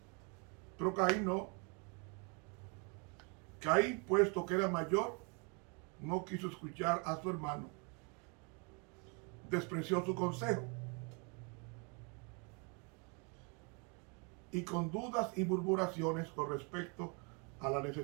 Pero Caín no. Caín, puesto que era mayor, no quiso escuchar a su hermano. Despreció su consejo. Y con dudas y murmuraciones con respecto a la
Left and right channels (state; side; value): quieter; left; 34.3 dB